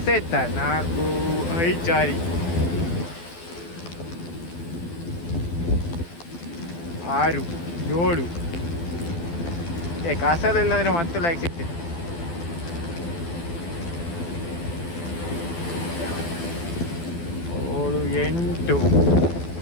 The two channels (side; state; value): right; late; 12 ms